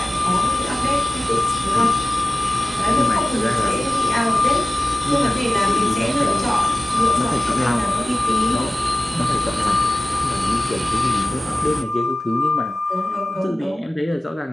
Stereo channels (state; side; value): normal; both; correlation 0.95